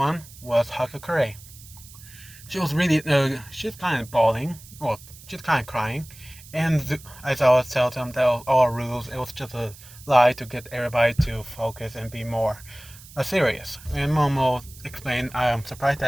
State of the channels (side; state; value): right; noise; hiss, 20 dB below the sound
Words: was Hakakure. She was really, she's kind of bawling, well, she's kind of crying. And as I always tell them, that was all rules. It was just a lie to get everybody to focus and be more serious. And Momo explained, I am surprised